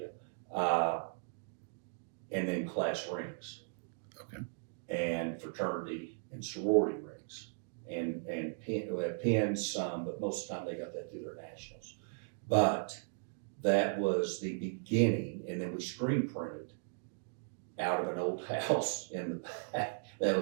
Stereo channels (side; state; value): left; silent; digital silence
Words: and then class rings. Okay. And fraternity and sorority rings, and pins, some, but most of the time they got that through their nationals. But that was the beginning, and then we screen printed out of an old house in the back that